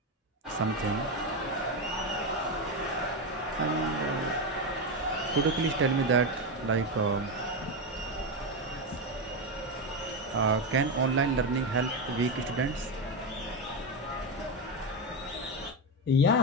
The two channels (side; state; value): both; normal; correlation 0.12